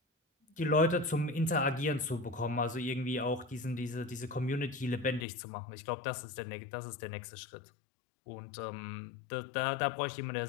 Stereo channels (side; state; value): right; drops out; at 5.2 s